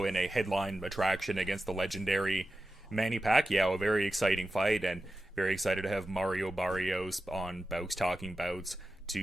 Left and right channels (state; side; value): normal; both; correlation 0.93